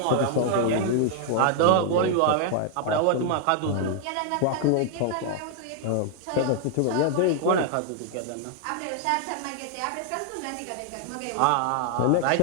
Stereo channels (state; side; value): different; both; correlation 0.00